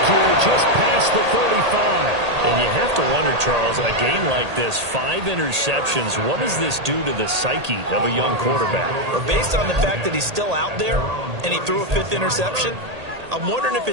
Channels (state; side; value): late; left; 1.8 ms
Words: here just past the 35. And you have to wonder, Charles, a game like this, 5 interceptions, what does this do to the psyche of a young quarterback? But based on the fact that he's still out there and he threw a 5th interception, I'm wondering if